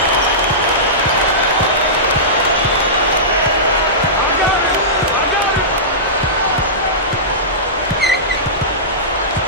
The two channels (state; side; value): normal; both; correlation -0.18